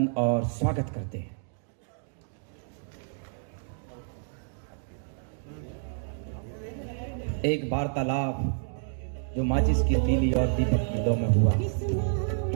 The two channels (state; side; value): silent; left; digital silence